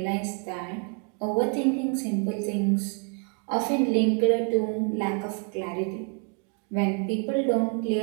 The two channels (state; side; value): quieter; left; 38.2 dB